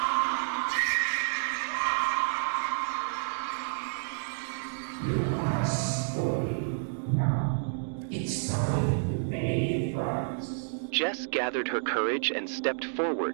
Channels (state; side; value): silent; left; digital silence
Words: It's time to pay first. Jess gathered her courage and stepped